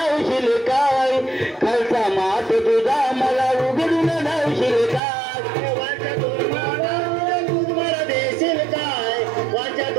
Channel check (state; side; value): drops out; left; at 5.0 s